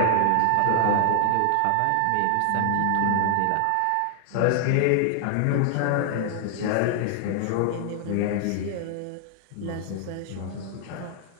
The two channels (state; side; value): different; both; correlation 0.00